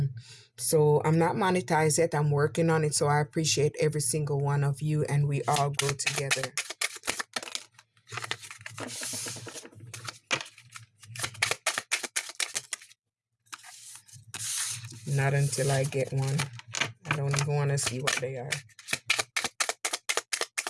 So I'm not monetized yet. I'm working on it. So I appreciate every single one of you, and we all grow together. Not until I get one. I don't even want to see what they are.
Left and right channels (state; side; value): identical; both; correlation 1.00